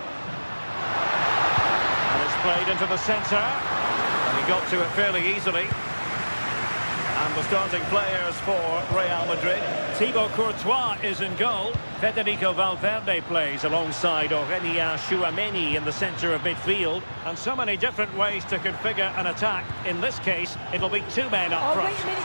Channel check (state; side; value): inverted; both; correlation -1.00